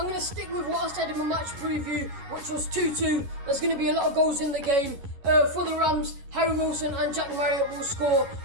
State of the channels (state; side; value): late; left; 11 ms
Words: to stick with what I said in my match preview, which was 2-2. There's going to be a lot of goals in the game. For the Rams, Harry Wilson and Jack Marriott will score.